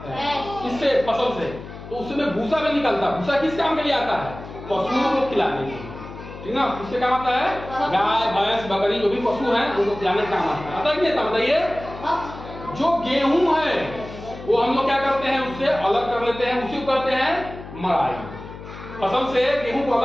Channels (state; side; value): noise; left; hum, 13 dB below the sound